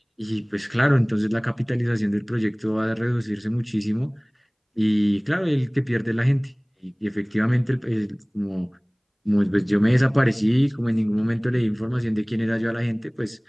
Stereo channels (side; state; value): both; identical; correlation 1.00